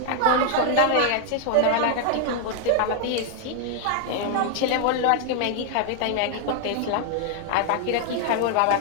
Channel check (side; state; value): both; different; correlation 0.00